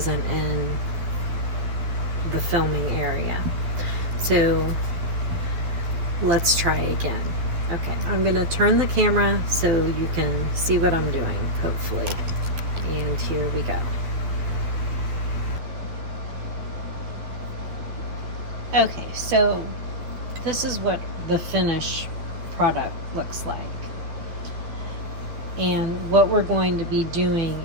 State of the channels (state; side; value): late; left; 12 ms